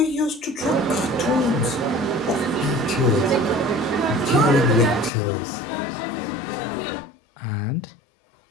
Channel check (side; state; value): right; drops out; at 5.1 s